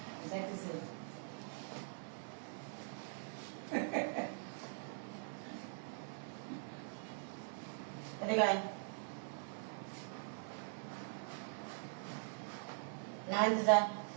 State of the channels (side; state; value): left; silent; digital silence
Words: গাই না যা